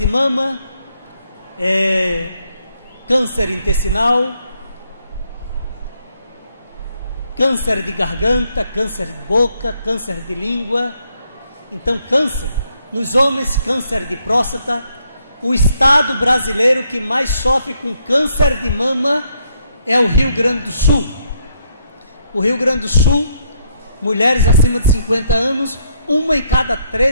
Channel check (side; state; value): both; inverted; correlation -0.74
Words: mama, câncer intestinal, câncer de garganta, câncer de boca, câncer de língua. Então, câncer. Nos homens, câncer de próstata. O estado brasileiro que mais sofre com câncer de mama é o Rio Grande do Sul. O Rio Grande do Sul, mulheres acima de 50 anos, 1 em cada